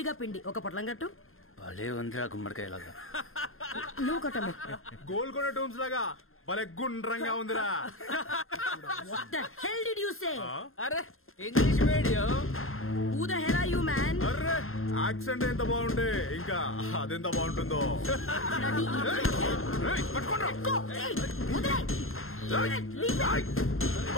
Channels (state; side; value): late; right; 0.61 ms